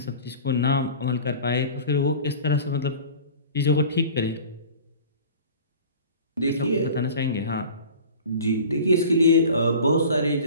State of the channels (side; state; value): both; inverted; correlation -0.41